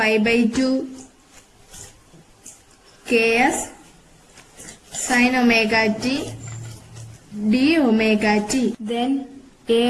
ks sin omega t d omega t. Then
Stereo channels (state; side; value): identical; both; correlation 1.00